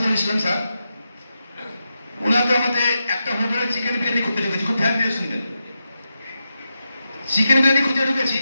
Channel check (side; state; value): both; inverted; correlation -0.88